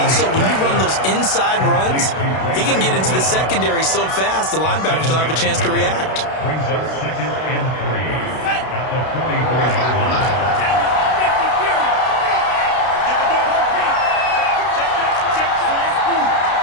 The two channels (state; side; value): late; right; 32 ms